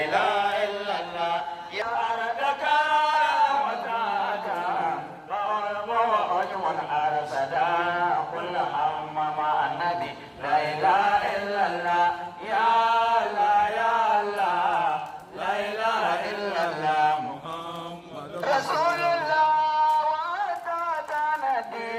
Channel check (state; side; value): identical; both; correlation 1.00